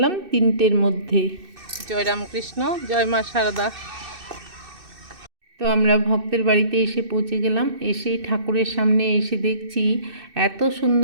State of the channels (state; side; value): late; left; 2.6 ms